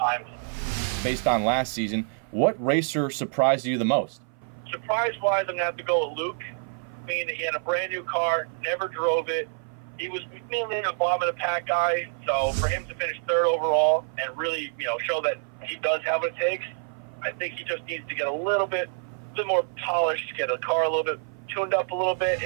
Based on last season, what racer surprised you the most? Surprise-wise, I'm going to have to go with Luke. I mean, he had a brand new car, never drove it. He was mainly a bottom of the pack guy, so for him to finish third overall and really, show that he does have what it takes, I think he just needs to get a little bit more polished, get the car a little bit tuned up a little bit.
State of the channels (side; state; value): left; silent; 56 dB below the other